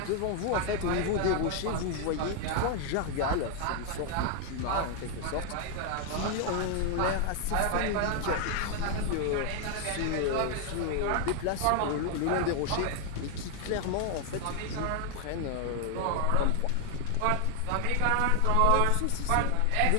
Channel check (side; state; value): both; different; correlation 0.00